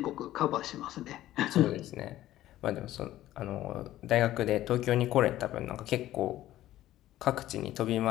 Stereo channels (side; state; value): right; quieter; 14.2 dB